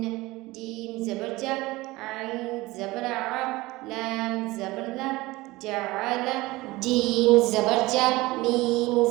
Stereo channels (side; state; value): left; quieter; 20.3 dB